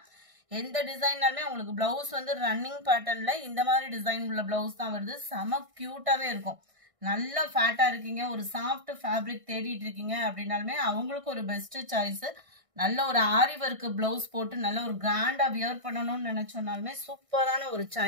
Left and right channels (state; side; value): late; left; 1.6 ms